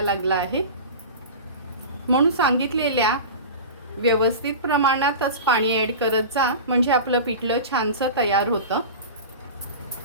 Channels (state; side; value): inverted; both; correlation -0.31